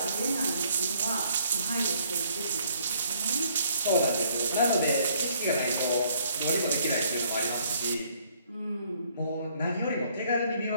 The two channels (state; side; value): inverted; both; correlation -0.63